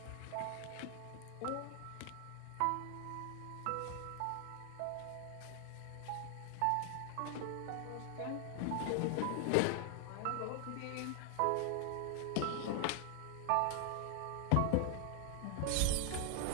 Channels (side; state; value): both; different; correlation 0.00